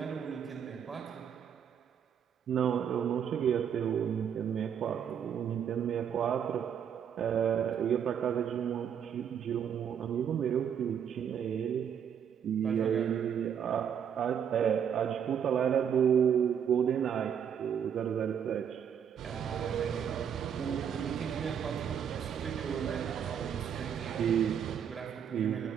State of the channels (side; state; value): left; quieter; 8.2 dB